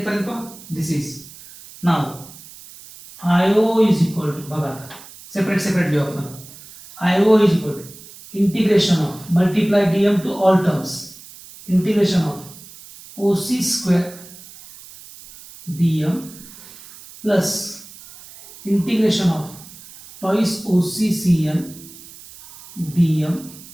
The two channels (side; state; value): right; noise; hiss, 19 dB below the sound